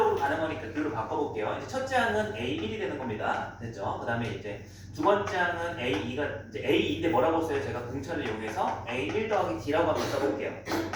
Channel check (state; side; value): identical; both; correlation 1.00